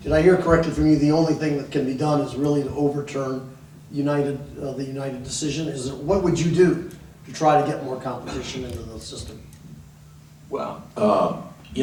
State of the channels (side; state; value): both; identical; correlation 1.00